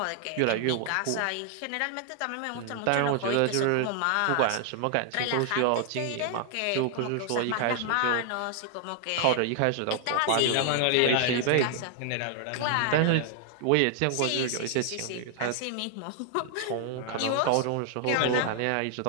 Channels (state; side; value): different; both; correlation 0.00